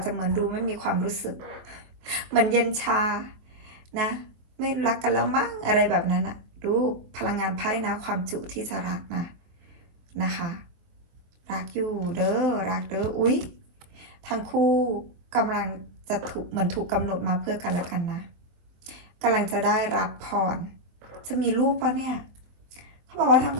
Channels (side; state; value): left; late; 23 ms